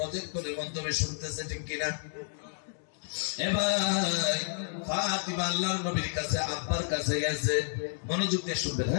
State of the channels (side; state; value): right; silent; 57 dB below the other